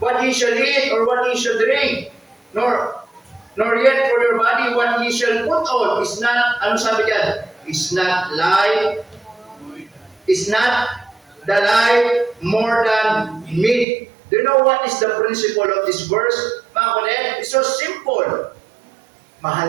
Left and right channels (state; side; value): drops out; left; at 13.9 s